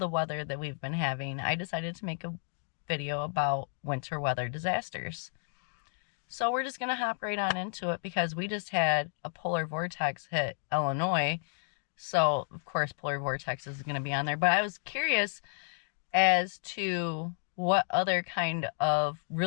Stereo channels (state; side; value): silent; right; 57 dB below the other